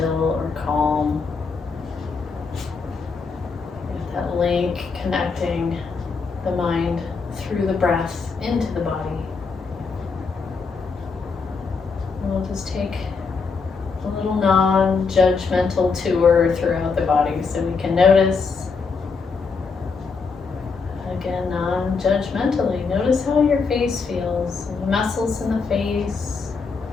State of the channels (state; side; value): quieter; right; 4.9 dB